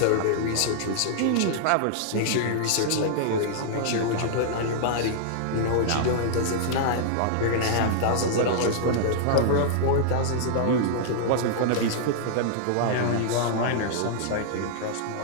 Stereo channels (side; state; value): both; different; correlation -0.01